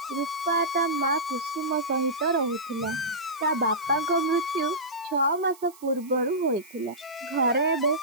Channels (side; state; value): right; noise; hiss, 23 dB below the sound